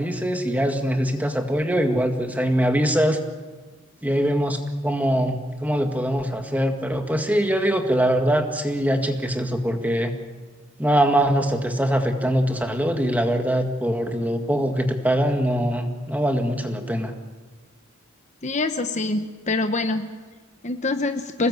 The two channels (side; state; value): both; normal; correlation 0.79